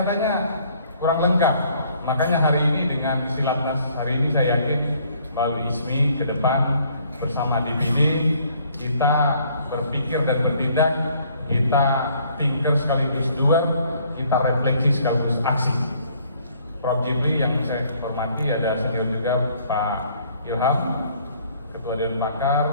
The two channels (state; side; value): inverted; both; correlation -0.61